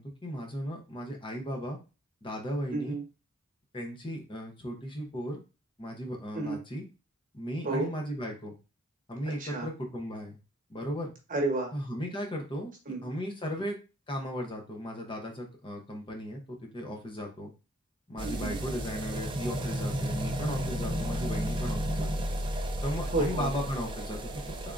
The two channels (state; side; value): normal; both; correlation 0.65